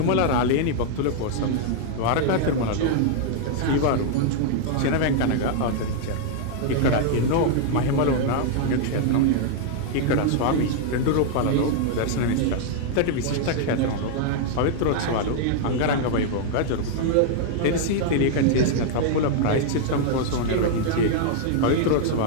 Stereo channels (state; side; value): different; both; correlation -0.01